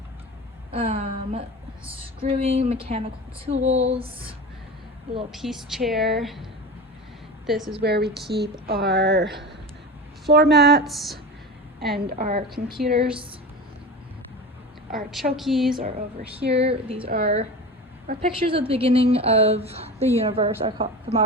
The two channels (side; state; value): both; normal; correlation 0.29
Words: Screwing, mechanical tools, a little peace chair. This is where we keep our floor mats and our computers. Our chokies are over here. These are our pictures at the beginning of the universe from